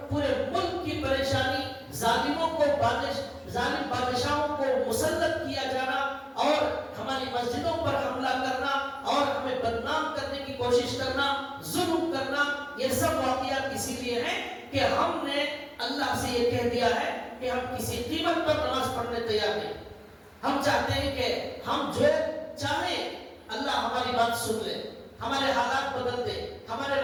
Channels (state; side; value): identical; both; correlation 1.00